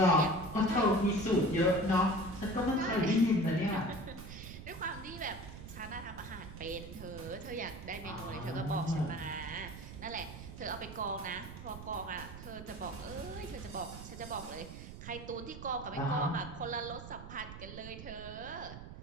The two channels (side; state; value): right; noise; rumble, 11 dB below the sound